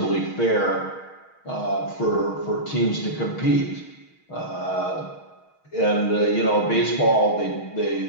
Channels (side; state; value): right; late; 6.4 ms